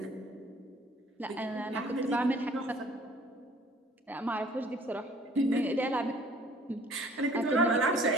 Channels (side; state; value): both; normal; correlation 0.54